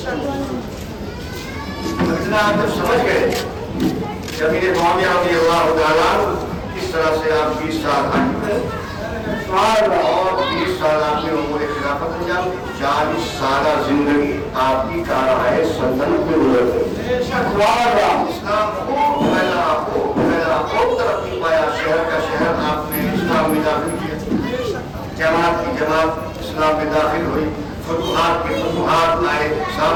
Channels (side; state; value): both; identical; correlation 1.00